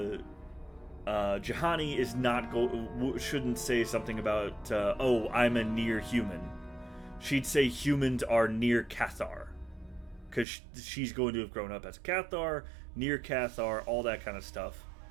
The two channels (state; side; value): drops out; left; at 10.5 s